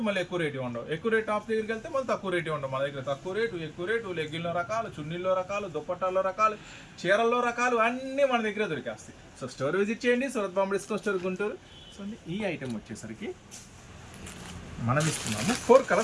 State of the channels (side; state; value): both; identical; correlation 1.00